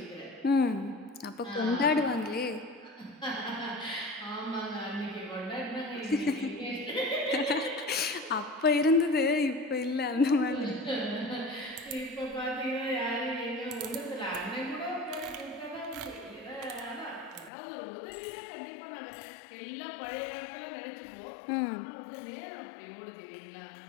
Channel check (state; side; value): drops out; right; at 17.5 s